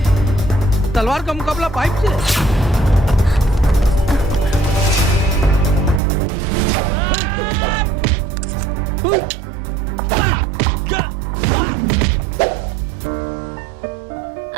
तलवार का मुकाबला पाइप से।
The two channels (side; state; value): left; drops out; at 6.0 s